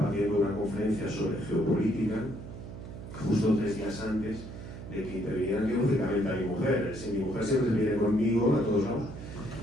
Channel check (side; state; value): right; noise; hum, 11 dB below the sound